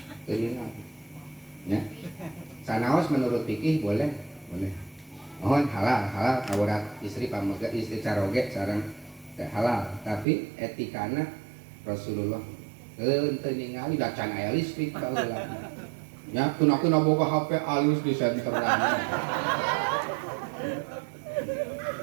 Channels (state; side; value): drops out; left; at 10.2 s